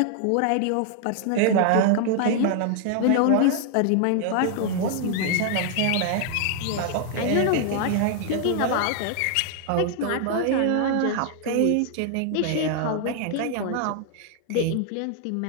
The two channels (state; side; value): different; both; correlation 0.00